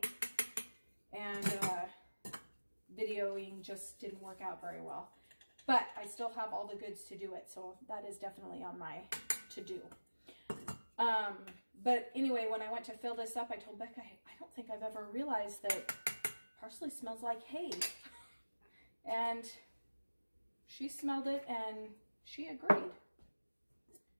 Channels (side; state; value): both; inverted; correlation -1.00